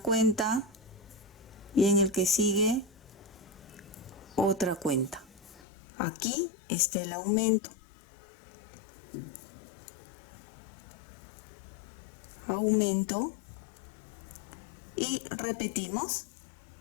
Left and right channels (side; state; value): right; drops out; at 5.6 s